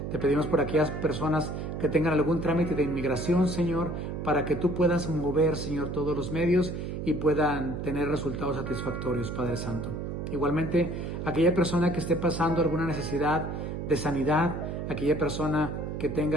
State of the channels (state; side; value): noise; right; hum, 5 dB below the sound